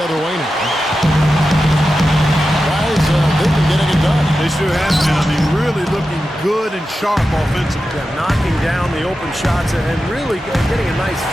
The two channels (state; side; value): normal; both; correlation 0.91